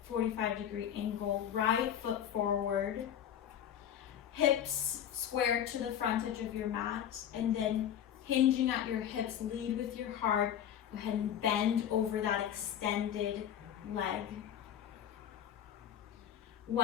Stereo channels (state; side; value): quieter; right; 9.8 dB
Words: 45-degree angle, right foot forward, hips square to the front edge of your mat, and then hinging at your hips, lead with your heart. Go ahead and bend over that extended leg.